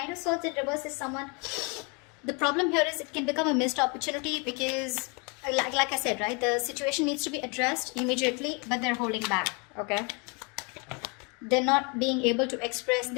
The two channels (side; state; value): right; quieter; 32.4 dB